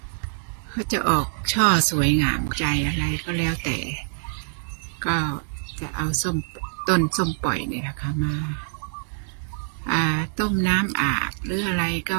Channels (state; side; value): silent; left; digital silence